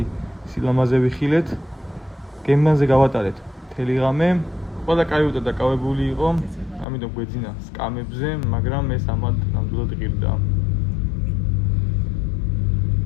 სილამაზე ვიხილეთ. გემბანზე გავატარეთ მთელი ღამე. ყველა კაიუტა დაკავებული იყო, ამიტომ გვეძინა სკამებზე, მაგრამ ეს ამად ნამდვილად ღირდა.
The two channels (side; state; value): right; drops out; at 6.9 s